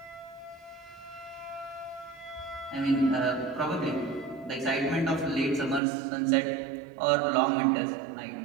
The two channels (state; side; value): drops out; left; at 5.8 s